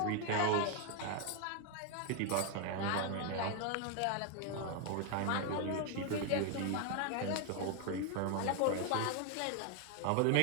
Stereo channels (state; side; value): different; both; correlation 0.01